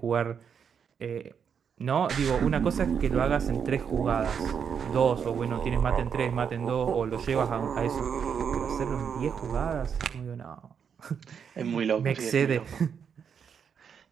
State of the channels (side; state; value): left; quieter; 7.2 dB